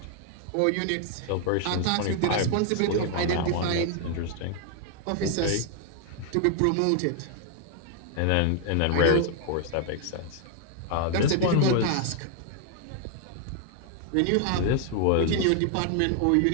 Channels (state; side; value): different; both; correlation 0.00